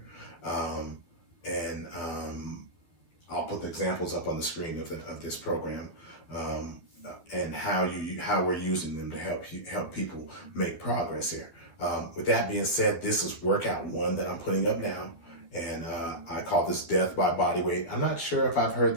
And I'll put the examples up on the screen of this program, and how we're using them to help people make progress here. With that being said, this is workout 1 that I'm putting up now, and I call this Death by Bodyweight. I'm not sure if I've heard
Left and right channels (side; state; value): right; late; 12 ms